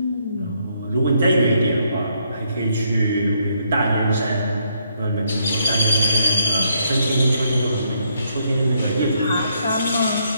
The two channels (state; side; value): inverted; both; correlation -0.73